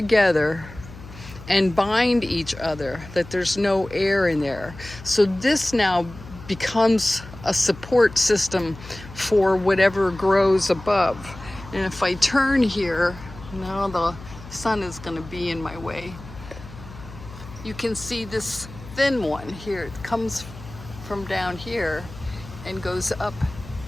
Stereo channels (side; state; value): left; noise; hum, 16 dB below the sound